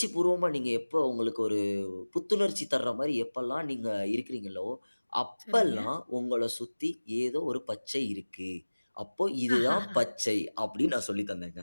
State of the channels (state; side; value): inverted; both; correlation -1.00